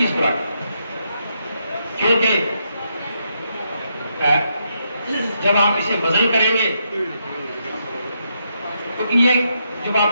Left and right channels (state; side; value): inverted; both; correlation -0.79